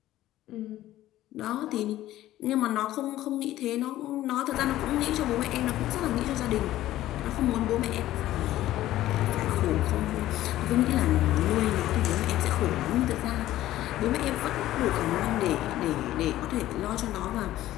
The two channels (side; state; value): right; quieter; 14.5 dB